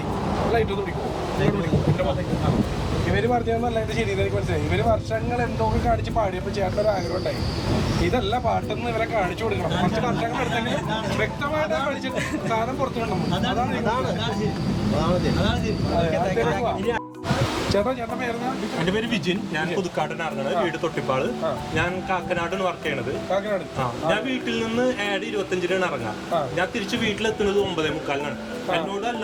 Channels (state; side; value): identical; both; correlation 1.00